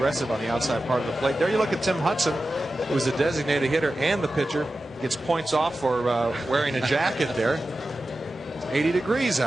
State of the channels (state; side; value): normal; both; correlation 0.93